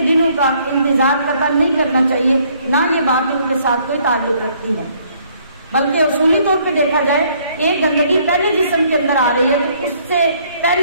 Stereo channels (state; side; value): inverted; both; correlation -0.64